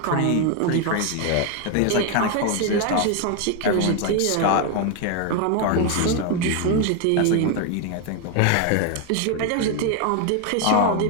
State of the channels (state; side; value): different; both; correlation 0.01